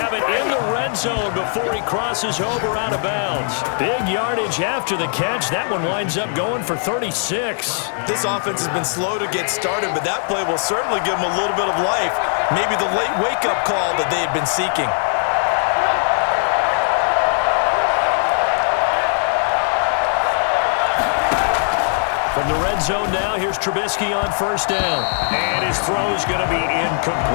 it in the red zone before he crosses over out of bounds. Big yardage after the catch. That one winds up going for 36. This offense has been slow to get started, but that play will certainly give them a little bit of life. Maybe the late wake-up call that they had been seeking. From the red zone now, here's Trubisky on first down. And his throw is going to be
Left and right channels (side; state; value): right; silent; digital silence